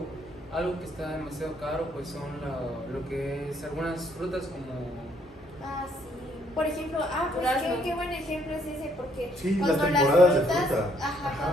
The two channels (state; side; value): normal; both; correlation 0.68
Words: que está demasiado caro pues son lo que es algunas frutas como Ah, sí. Por ejemplo, pues Durazno. qué buen ejemplo es ese, porque Sí, cuando las temporadas de frutas, fruta.